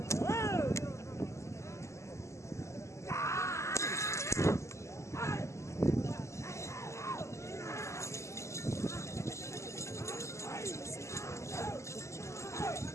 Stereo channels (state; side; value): late; right; 0.14 ms